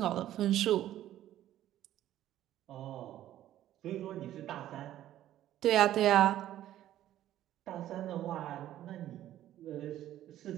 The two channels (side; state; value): left; quieter; 12.8 dB